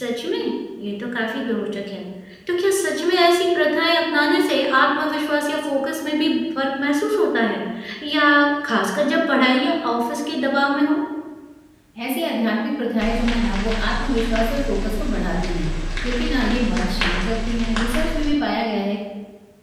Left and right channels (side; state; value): both; identical; correlation 1.00